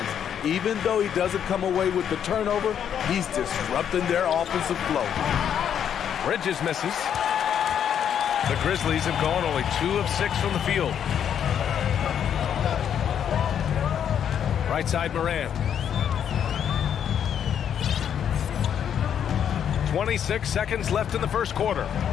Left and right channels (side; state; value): right; quieter; 8.8 dB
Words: Even though he doesn't come away with the turnover, he's disrupting their offensive flow. Bridges misses. The Grizzlies have gone only 2 of 6 from the field. Right side, Morant. 26 seconds left in the first quarter.